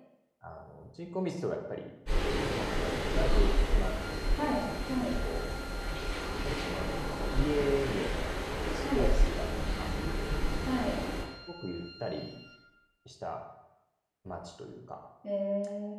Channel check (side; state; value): both; identical; correlation 1.00